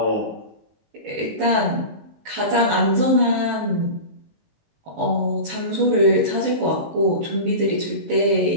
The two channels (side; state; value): left; late; 18 ms